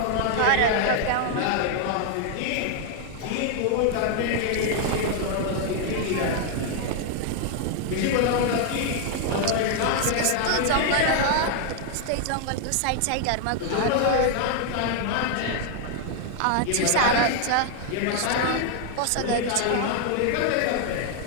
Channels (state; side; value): different; both; correlation 0.00